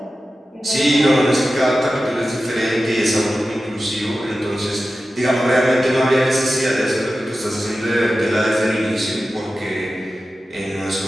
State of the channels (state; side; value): normal; both; correlation 0.94